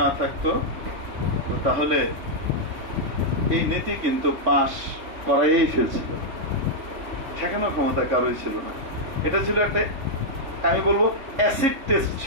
না থাকতো, তাহলে এই নীতি কিন্তু পাশ করাই ফেলছিল, ঠেকানোর ক্ষমতা কারোই ছিল না। এটা ছিল একটা, আমি বলবো অ্যাসিড টেস্ট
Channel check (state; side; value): late; left; 3.6 ms